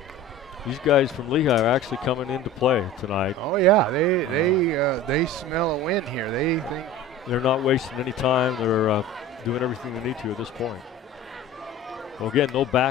These guys from Lehi are actually coming into play tonight. Oh yeah, they smell a win here. They think they're not wasting any time. They're doing everything they need to at this point. Well, again, no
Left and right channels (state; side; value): normal; both; correlation 0.37